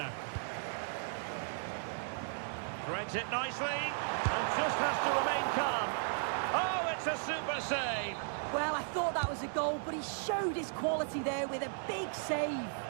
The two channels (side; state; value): left; silent; digital silence